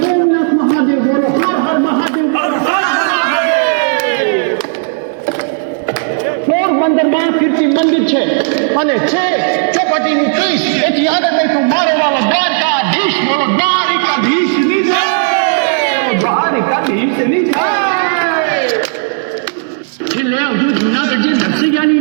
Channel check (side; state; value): left; silent; digital silence